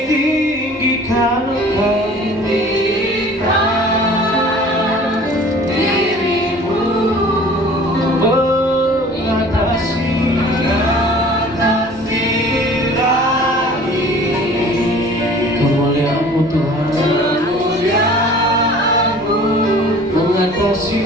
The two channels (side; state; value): both; normal; correlation 0.47